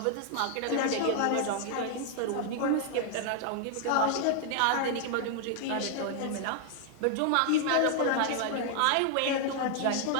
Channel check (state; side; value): different; both; correlation 0.00